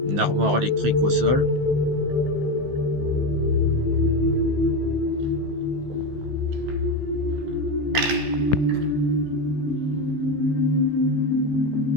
Une armoire électrique au sol.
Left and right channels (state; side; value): late; left; 15 ms